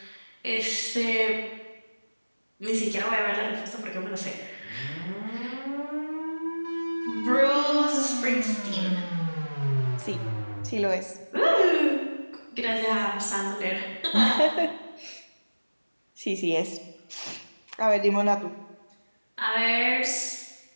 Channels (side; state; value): both; inverted; correlation -1.00